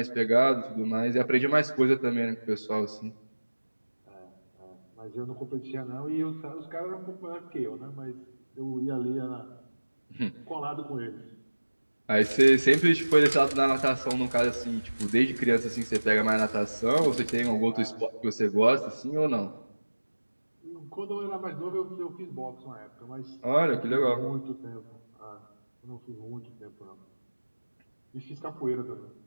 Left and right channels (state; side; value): inverted; both; correlation -1.00